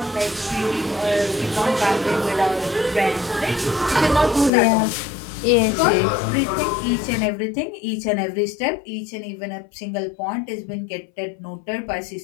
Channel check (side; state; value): right; drops out; at 4.5 s